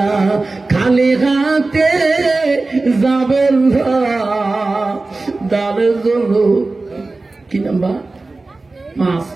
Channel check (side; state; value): left; quieter; 3.4 dB